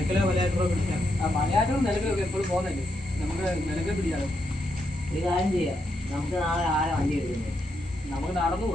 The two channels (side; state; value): both; normal; correlation 0.80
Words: മലയാറ്റോ പിടിക്കാം. മലയാറ്റവും നിലക്കലൊക്കെ എപ്പോഴും പോകുന്നല്ലേ, നമുക്ക് നിലക്കൽ പിടിക്കാലോ. ഒരു കാര്യം ചെയ്യാം, നമുക്ക് നാളെ ആരെ വണ്ടി എടുക്കുന്നത്, നമുക്ക് നടന്നു